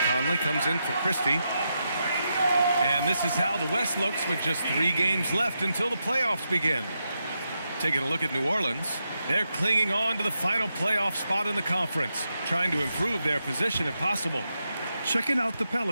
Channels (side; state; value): both; inverted; correlation -0.85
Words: Conley comes in for Christie. And this is how the West looks with just 3 games left until the playoffs begin. Taking a look at New Orleans. They're clinging on to the final playoff spot in the conference, trying to improve their position if possible. Checking out the